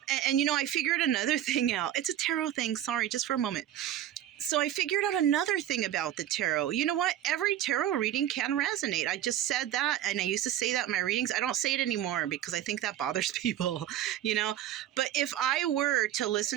And I figured another thing out. It's a tarot thing. Sorry, just for a moment. So I figured out another thing about the tarot. You know what? Every tarot reading can resonate. I just said that, and I used to say that in my readings. I don't say it anymore because I think that bothers people, But if I were to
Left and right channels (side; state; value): left; quieter; 11.7 dB